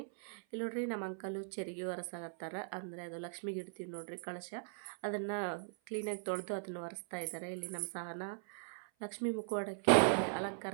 ಇಲ್ಲಿ ನೋಡ್ರಿ, ನಮ್ಮ ಅಂಕಲು ಚೆರಿಗೆ ಒರೆಸಾಗತ್ತಾರ. ಅಂದರೆ ಅದು ಲಕ್ಷ್ಮಿಗೆ ಇಡ್ತೀವಿ ನೋಡ್ರಿ ಕಳಶ, ಅದನ್ನು ಕ್ಲೀನಾಗಿ ತೊಳೆದು ಅದನ್ನು ಒರೆಸ್ತಾ ಇದ್ದಾರೆ. ಇಲ್ಲಿ ನಮ್ಮ ಸಹನ ಲಕ್ಷ್ಮೀ ಮುಖವಾಡಕ್ಕೆ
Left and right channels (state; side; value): silent; left; 51 dB below the other